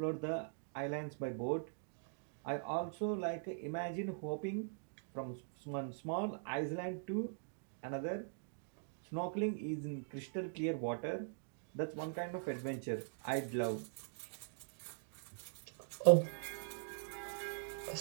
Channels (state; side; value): silent; left; digital silence